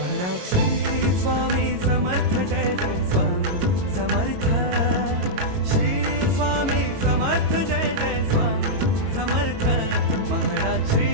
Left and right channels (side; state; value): left; late; 22 ms